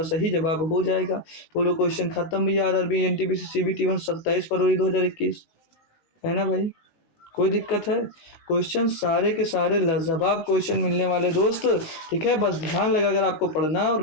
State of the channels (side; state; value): right; late; 19 ms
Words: सही जवाब हो जाएगा। बोलो क्वेश्चन खत्म भैया। RRB NTPC CBT 1 27 फरवरी 2021 है ना भाई? कोई दिक्कत है? क्वेश्चन सारे के सारे लाजवाब क्वेश्चन मिलने वाले दोस्त, ठीक है। बस ध्यान लगा कर आपको पढ़ना और